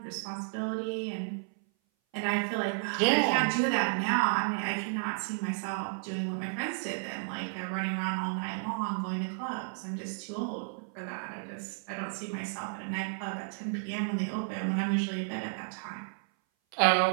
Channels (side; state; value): left; silent; 56 dB below the other